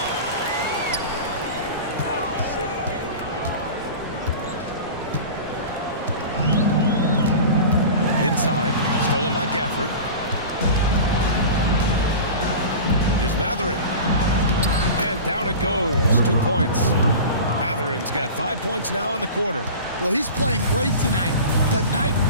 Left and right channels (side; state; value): both; inverted; correlation -0.34